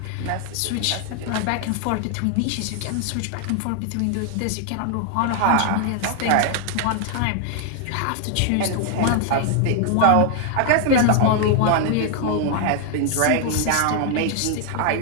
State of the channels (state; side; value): different; both; correlation 0.00